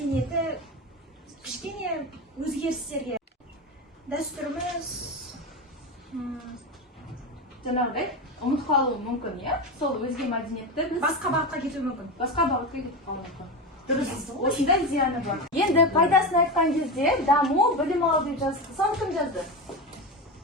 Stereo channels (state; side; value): normal; both; correlation 0.20